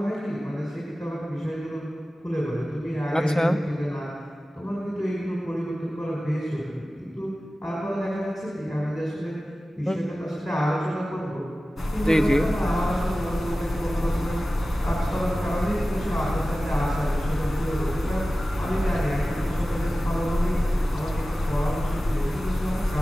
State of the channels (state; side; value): normal; both; correlation 0.96